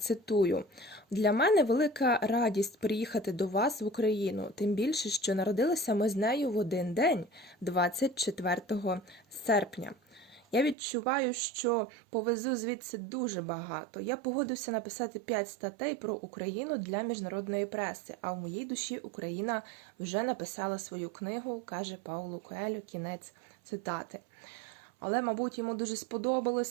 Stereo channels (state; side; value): drops out; left; at 10.8 s